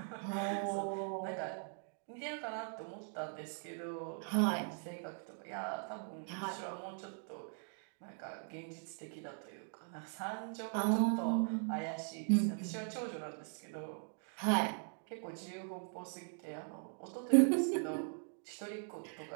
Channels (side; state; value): left; silent; 51 dB below the other